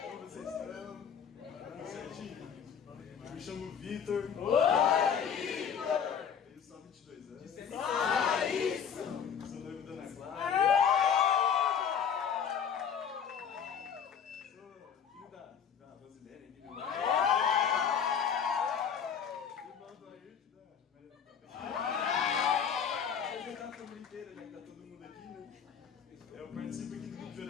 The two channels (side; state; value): right; quieter; 7.6 dB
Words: Como vocês estão? Tudo certinho? Eu me chamo Vitor. Oi, Vitor! Tenho só 22 anos. Isso! Sou noivo da Ana Clara. Sou filho da Rosilene aqui do lado. Irmão do Ayrton da Maria. Vou apresentar a família inteira, já que tá todo mundo aqui, né? Eu participo aqui do grupo de